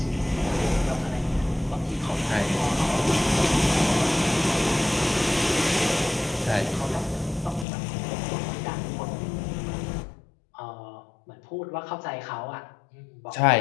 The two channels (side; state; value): right; drops out; at 7.7 s